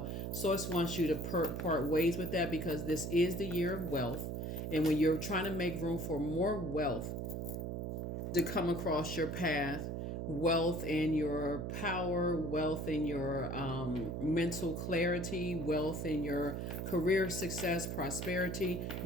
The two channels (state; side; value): noise; right; hum, 3 dB below the sound